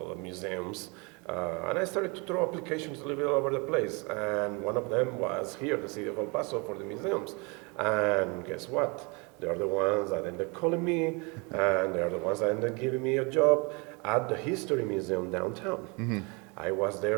of museums. And I started to throw applications a little bit all over the place. And one of them was here, the city of El Paso, for the museums. And guess what? They are the ones that ended up calling me, and they are the ones that ended up giving me a job at the History Museum downtown. I was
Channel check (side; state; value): left; quieter; 30.1 dB